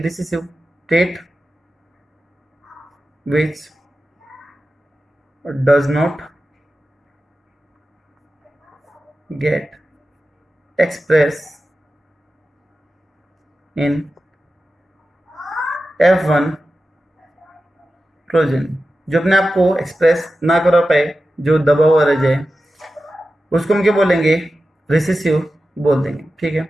trait which does not get expressed in F1 प्रोजेन। जो अपने आप को एक्सप्रेस ना करा पाए, जो दबा हुआ रह जाए, उसको हम क्या बोलेंगे, रिसेसिव बोल देंगे। ठीक है,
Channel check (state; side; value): normal; both; correlation 0.93